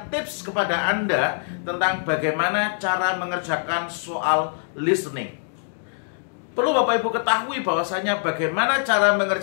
tips kepada Anda tentang bagaimana cara mengerjakan soal listening. Perlu Bapak Ibu ketahui bahwasanya bagaimana cara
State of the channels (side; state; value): right; silent; digital silence